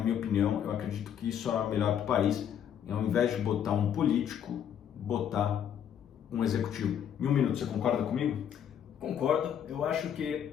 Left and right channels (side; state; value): right; quieter; 9.1 dB